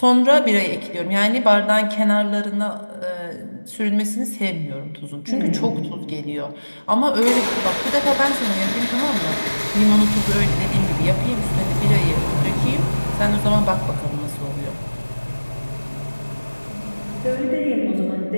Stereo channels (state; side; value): inverted; both; correlation -1.00